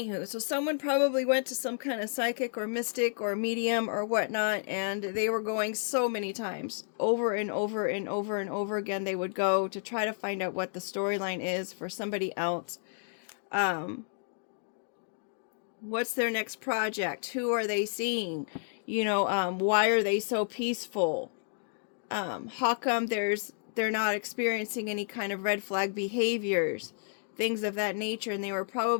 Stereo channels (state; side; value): silent; right; digital silence